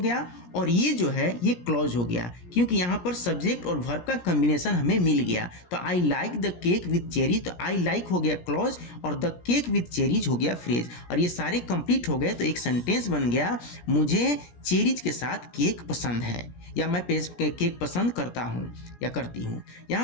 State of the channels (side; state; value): right; late; 17 ms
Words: और ये जो है ये क्लॉज हो गया, क्योंकि यहाँ पर सब्जेक्ट और वर्ब का कॉम्बिनेशन हमें मिल गया। तो I like the cake with cherries, तो आई लाइक हो गया क्लॉज और द केक विथ चेरीज हो गया फ्रेज, और ये सारे कंप्लीट हो गए तो एक सेंटेंस बन गया, मुझे चेरीज के साथ केक पसंद है, या मैं केक पसंद करता हूँ या करती हूँ।